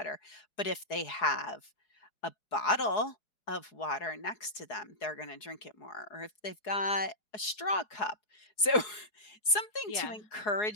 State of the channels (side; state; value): right; late; 4.7 ms